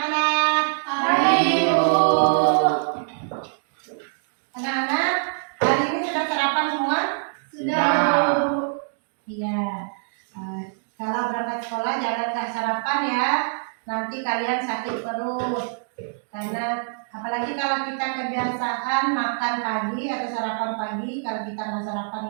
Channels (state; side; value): silent; left; digital silence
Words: Pagi, Ibu. Anak-anak, hari ini sudah sarapan semua? Sudah. Iya. Kalau berangkat sekolah jangan nggak sarapan ya. Nanti kalian sakit perut. Karena apalagi kalau kita kebiasaan makan pagi atau sarapan pagi, kalau kita nggak